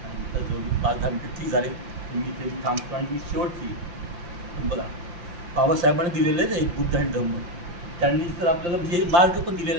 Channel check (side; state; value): left; late; 5.8 ms